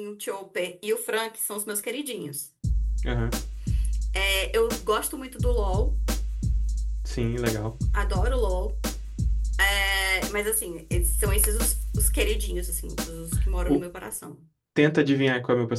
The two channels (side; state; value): both; identical; correlation 1.00